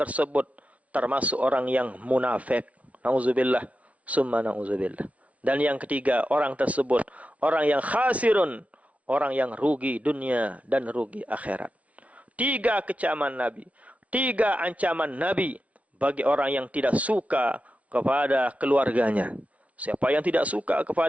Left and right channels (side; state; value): left; late; 0.066 ms